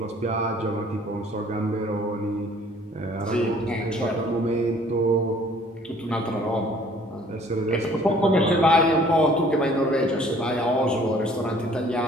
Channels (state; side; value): normal; both; correlation 0.56